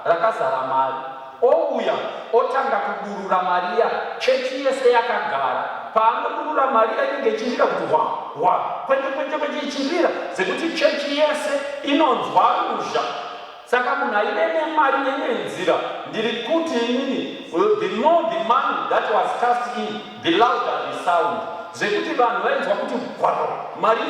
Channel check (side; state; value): both; identical; correlation 1.00